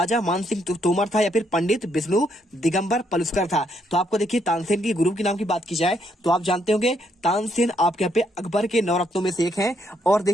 मान सिंह तोमर था या फिर पंडित विष्णु दिगंबर पलुस्कर था। तो आपको देखिए तानसेन के गुरु के नाम की बात की जाए तो आप जानते होंगे तानसेन आपके यहाँ पे अकबर के 9 रत्नों में से एक है। और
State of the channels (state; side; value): normal; both; correlation 0.73